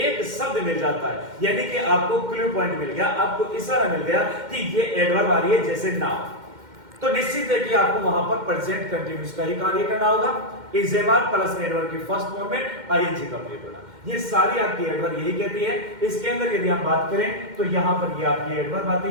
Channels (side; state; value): left; late; 2.1 ms